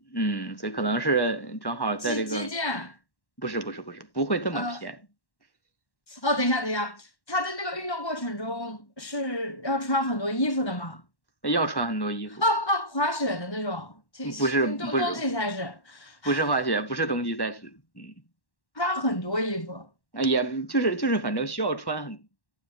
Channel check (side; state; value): right; late; 1.1 ms